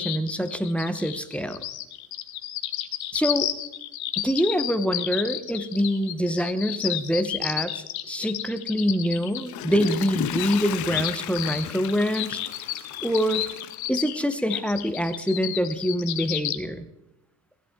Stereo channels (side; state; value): both; normal; correlation 0.72